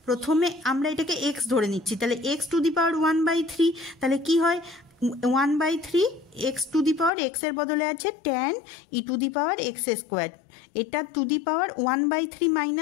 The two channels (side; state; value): right; drops out; at 7.1 s